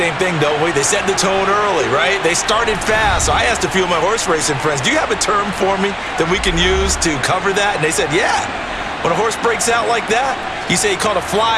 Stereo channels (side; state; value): both; identical; correlation 1.00